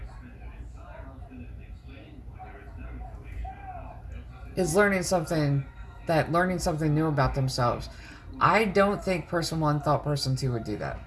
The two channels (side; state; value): both; identical; correlation 1.00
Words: is learning something new about themselves. I don't think person one thought person two would do that.